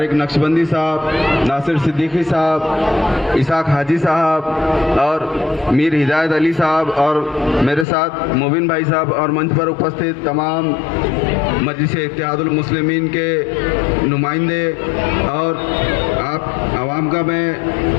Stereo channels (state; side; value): drops out; right; at 7.9 s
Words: नक्शबंदी साहब, नासिर सिद्दीकी साहब, इसाक हाजी साहब और मीर हिदायत अली साहब, और मेरे साथ मुबिन भाई साहब, और मंच पर उपस्थित तमाम मजलिस इत्तेहादुल मुस्लिमीन के नुमाइंदे, और आप आवाम का